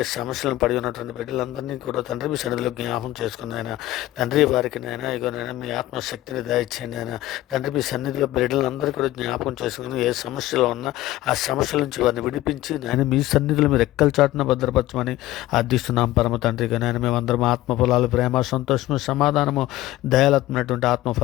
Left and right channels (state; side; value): quieter; right; 15.9 dB